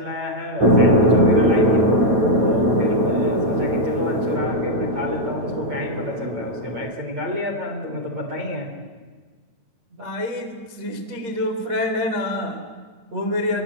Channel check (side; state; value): left; late; 9.1 ms